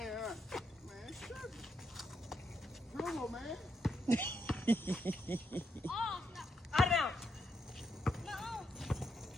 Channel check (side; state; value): both; normal; correlation 0.79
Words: ain't man, shut it. Bruno, man. Oh, no. Out of bounds. No.